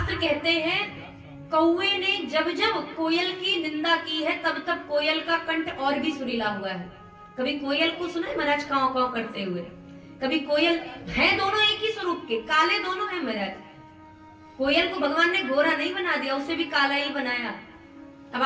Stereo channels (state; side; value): identical; both; correlation 1.00